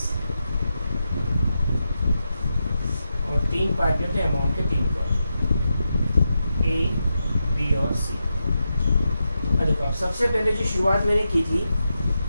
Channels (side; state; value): both; inverted; correlation -0.87